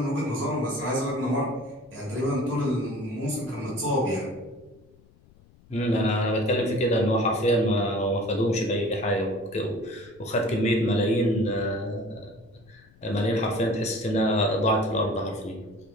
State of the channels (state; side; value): noise; left; rumble, 28 dB below the sound